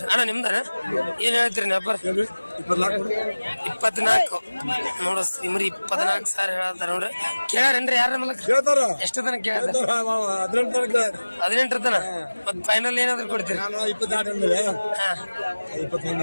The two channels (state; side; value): inverted; both; correlation -1.00